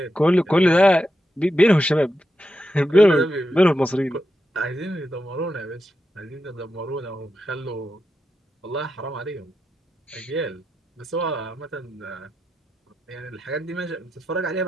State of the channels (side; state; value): both; normal; correlation 0.88